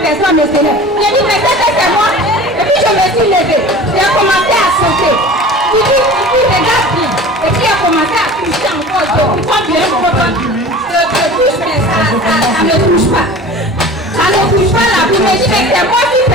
personne ne se lève. J'ai dit, mais c'est moi. Et puis je me suis levée. J'ai commencé à sauter. Il dit, regarde bien. Et puis il a commencé à toucher encore. Je comprends bien, je touche, mais ça ne touche pas. Ça ne touche pas la vie. Mais il dit, mais c'est moi qui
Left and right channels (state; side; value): normal; both; correlation 0.40